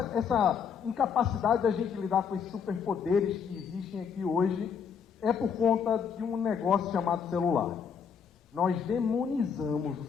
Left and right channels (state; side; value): quieter; right; 6.8 dB